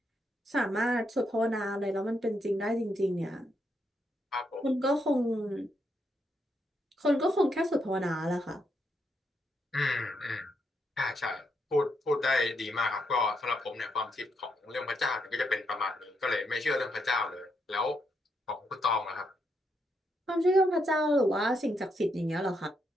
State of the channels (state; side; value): normal; both; correlation 0.79